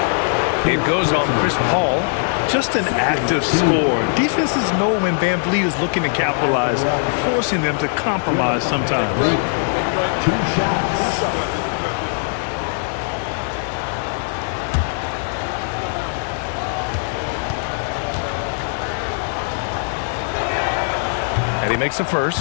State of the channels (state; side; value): silent; right; digital silence